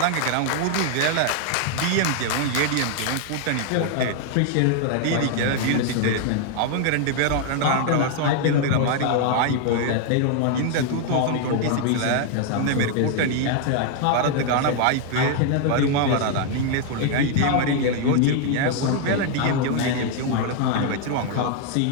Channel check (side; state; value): both; different; correlation 0.00